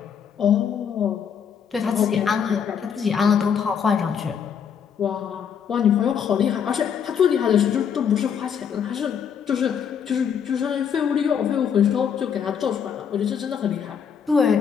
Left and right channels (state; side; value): quieter; right; 7.6 dB